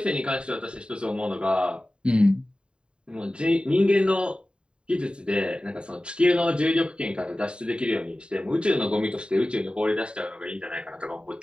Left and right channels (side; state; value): left; late; 0.052 ms